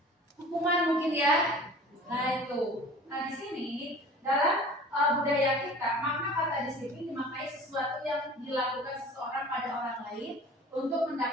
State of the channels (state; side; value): normal; both; correlation 0.43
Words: Hukuman mungkin ya. Nah itu. Nah di sini dalam budaya kita makna kata disiplin dimaknai sesuatu yang dilakukan seseorang pada orang lain untuk